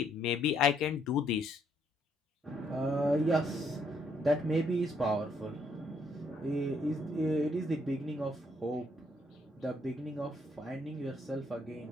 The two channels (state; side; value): normal; both; correlation 0.71